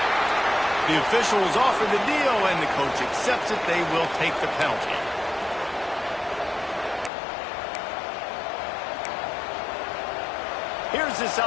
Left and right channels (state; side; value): drops out; right; at 7.1 s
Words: The officials offer the deal, and the coach accepts it. They will take the penalty. Here's this